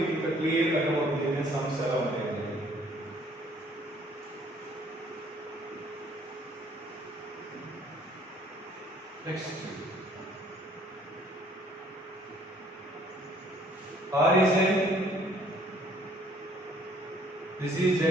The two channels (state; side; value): normal; both; correlation 0.59